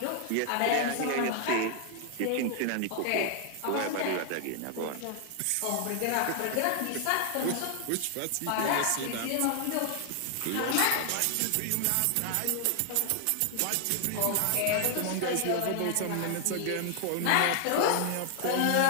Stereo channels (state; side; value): different; both; correlation 0.00